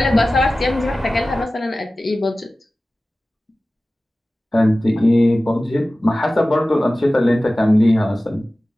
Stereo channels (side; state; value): both; normal; correlation 0.96